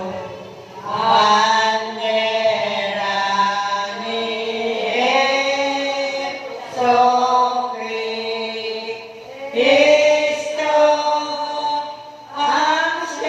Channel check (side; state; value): both; identical; correlation 1.00